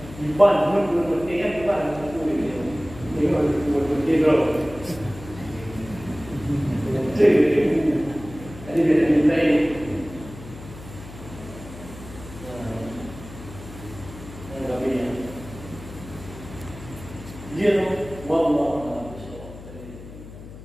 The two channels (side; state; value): left; noise; hum, 15 dB below the sound